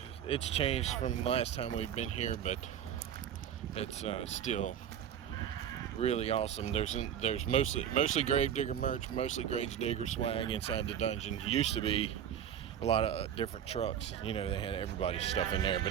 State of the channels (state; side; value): quieter; left; 9.5 dB